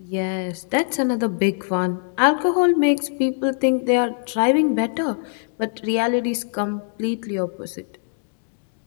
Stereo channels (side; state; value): right; silent; 63 dB below the other